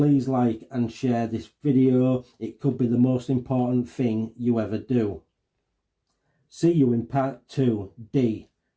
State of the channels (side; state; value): both; identical; correlation 1.00